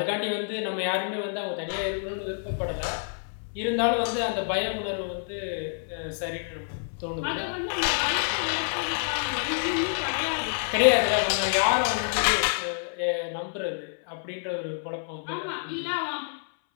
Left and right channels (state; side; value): silent; right; 60 dB below the other